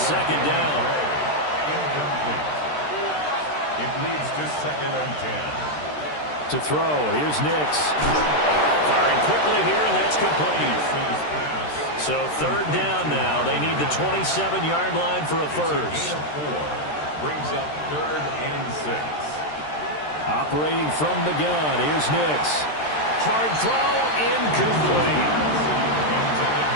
second down. Incomplete. It leads to 2nd and 10. To throw, here's Nix. Firing quickly here, and that's complete. So 3rd down now. They need the 27-yard line for a first. Gain of 4. Brings up 3rd and 6. Operating from the gun, here's Nix. Hard throw, incomplete. Intended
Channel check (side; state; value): right; late; 13 ms